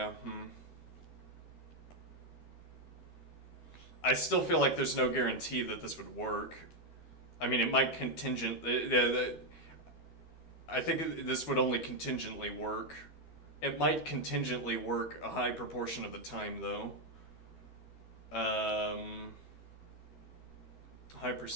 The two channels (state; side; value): late; right; 12 ms